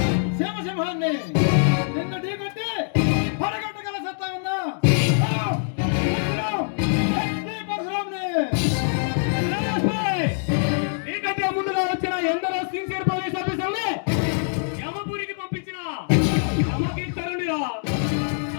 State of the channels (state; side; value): silent; right; digital silence